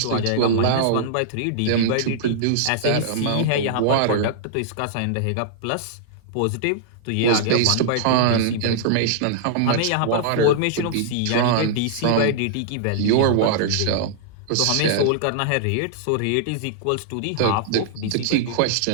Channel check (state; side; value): different; both; correlation -0.01